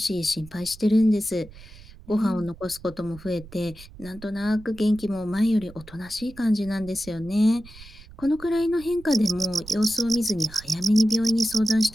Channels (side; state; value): right; noise; rumble, 19 dB below the sound